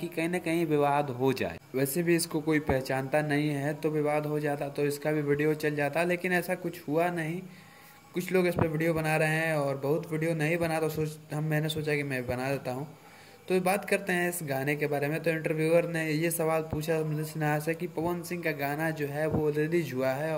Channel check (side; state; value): both; identical; correlation 1.00